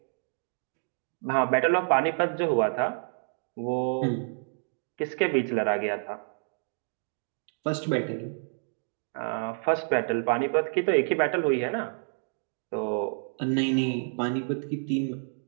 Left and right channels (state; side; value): silent; left; digital silence